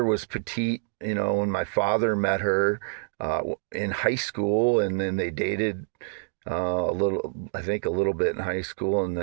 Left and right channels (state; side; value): silent; left; digital silence